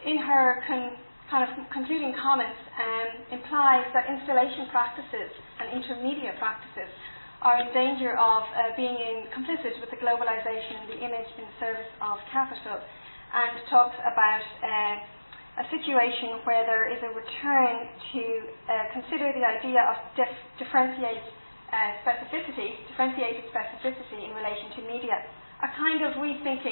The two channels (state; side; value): inverted; both; correlation -1.00